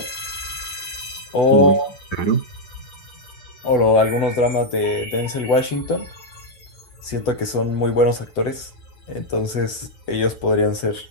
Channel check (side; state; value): right; late; 8.0 ms